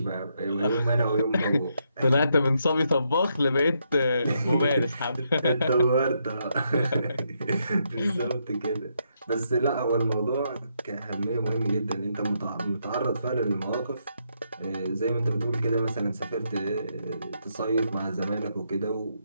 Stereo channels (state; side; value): inverted; both; correlation -0.78